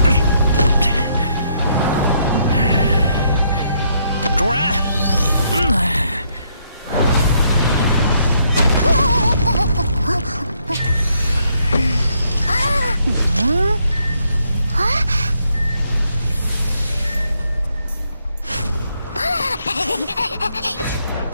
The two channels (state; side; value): inverted; both; correlation -0.73